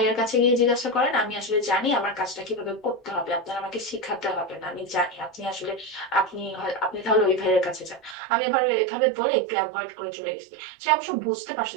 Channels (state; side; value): drops out; left; at 8.2 s